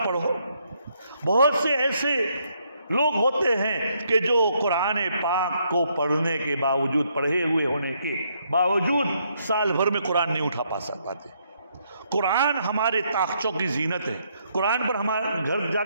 پڑھو. بہت سے ایسے لوگ ہوتے ہیں کہ جو قرآن پاک کو پڑھنے کے باوجود، پڑھے ہوئے ہونے کے باوجود سال بھر میں قرآن نہیں اٹھا پاتے. قرآن ہمارے طاقچوں کی زینت ہے. قرآن پر ہمارے گھر جا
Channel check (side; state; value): both; inverted; correlation -0.73